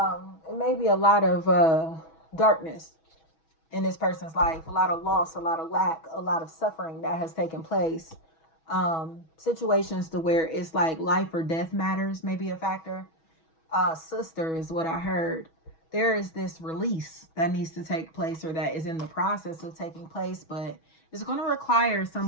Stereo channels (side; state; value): right; late; 6.2 ms